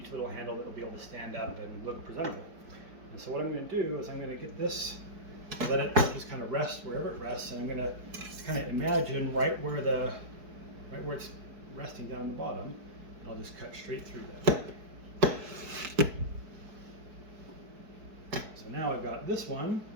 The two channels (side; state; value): left; late; 4.7 ms